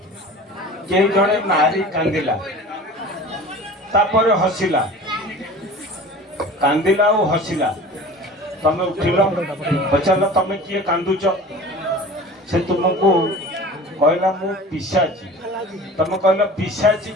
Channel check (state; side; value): normal; both; correlation 0.39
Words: के जणे नारी कांदिला तापर हसिला कांदिला और हसिला तमे उठिल पचार तमे किए कांदुच से तुमको कहला मु पिशाची तमे कहला पिशाची